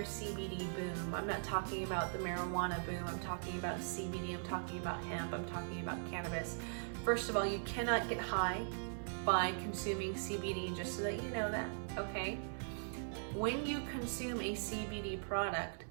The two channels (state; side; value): silent; left; digital silence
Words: CBD boom, I'm not talking about the marijuana boom, I'm talking about CBD, I'm talking about hemp, I'm talking about cannabis. First of all, you cannot get high by consuming CBD, just so that you know that, okay? When you consume a CBD product,